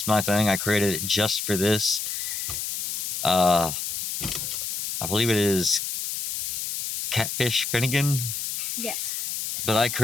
my thing. I created it just for this. I believe it is Catfish Finnegan. Yes. But I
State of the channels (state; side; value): noise; left; hiss, 3 dB below the sound